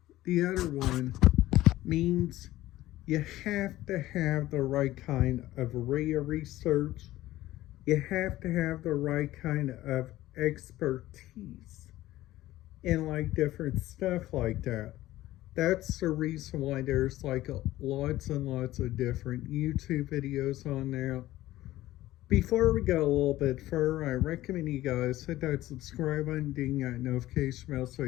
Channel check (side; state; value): right; quieter; 15.8 dB